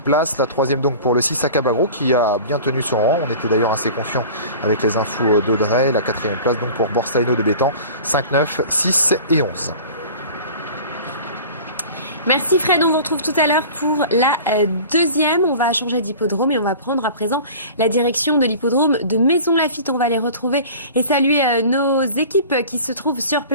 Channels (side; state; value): both; inverted; correlation -0.40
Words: place. La troisième donc pour le 6 Akabagro qui a bien tenu son rang. On était d'ailleurs assez confiant avec les infos d'Audrey. La quatrième place donc pour Borsalino de Bétan. 5, 9, 6 et 11. Merci Fred, on vous retrouve tout à l'heure pour la deuxième. On va changer d'hippodrome et on va prendre à présent la direction de l'hippodrome de Maisons-Laffitte. On va les retrouver et saluer nos équipes qui se trouvent sur